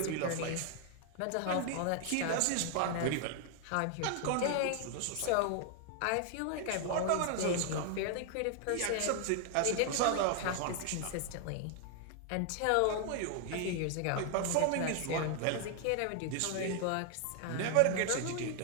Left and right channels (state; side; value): different; both; correlation 0.00